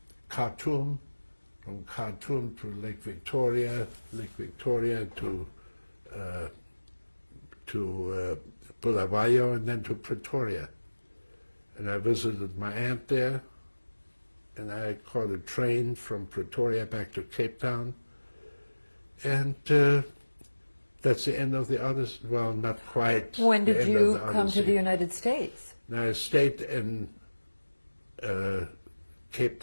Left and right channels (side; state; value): both; inverted; correlation -1.00